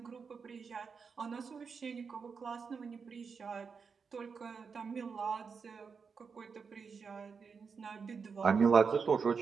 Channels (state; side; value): quieter; left; 5.6 dB